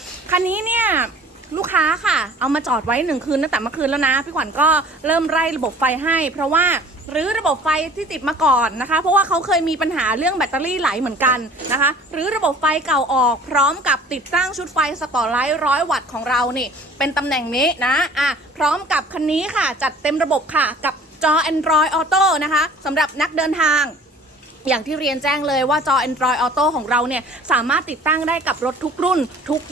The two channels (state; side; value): normal; both; correlation 0.48